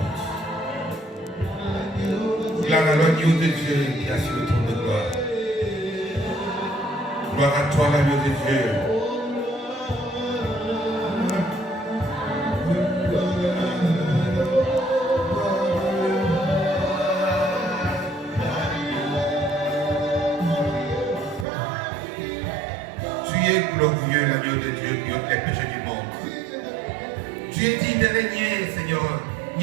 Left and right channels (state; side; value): drops out; left; at 21.5 s